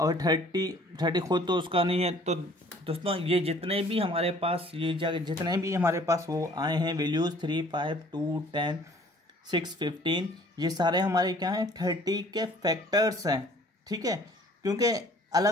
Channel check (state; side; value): normal; both; correlation 0.55